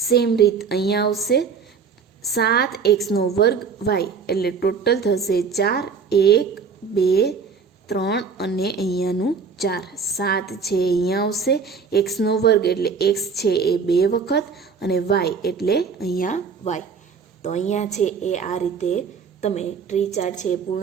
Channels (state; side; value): quieter; left; 5.6 dB